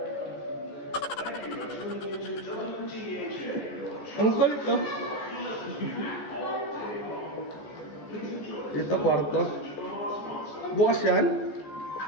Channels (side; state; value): right; late; 14 ms